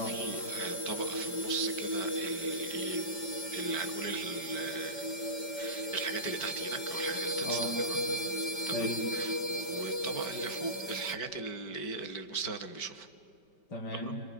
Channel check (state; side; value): late; right; 5.1 ms